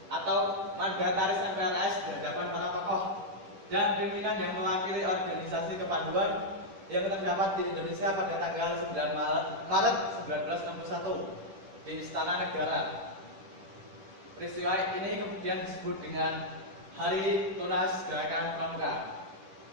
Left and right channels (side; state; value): left; late; 10 ms